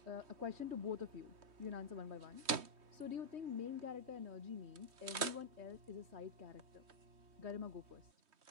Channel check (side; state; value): left; late; 3.2 ms